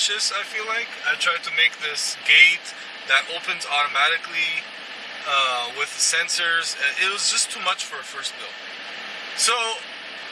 I feel like. I tried to make this gate that opens automatically with the sensors. It was just too much for a first build. So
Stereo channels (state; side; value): identical; both; correlation 1.00